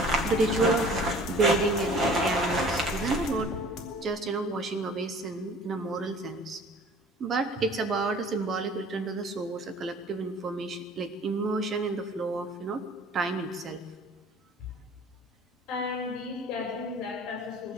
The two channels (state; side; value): normal; both; correlation 0.48